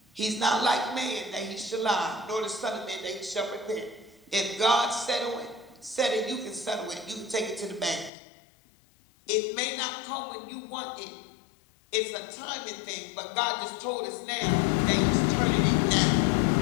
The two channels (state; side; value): drops out; right; at 8.1 s